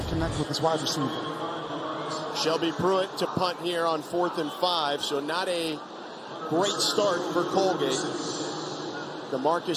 connect with his wide receiver. Shelby Pruitt to punt here on 4th and 5, so not a great start for Colgate.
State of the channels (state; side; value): identical; both; correlation 1.00